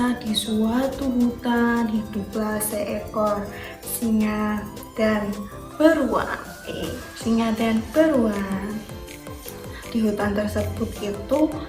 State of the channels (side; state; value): both; identical; correlation 1.00